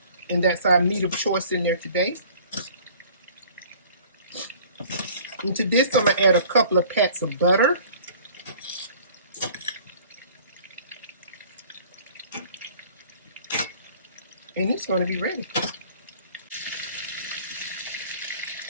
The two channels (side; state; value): both; inverted; correlation -0.50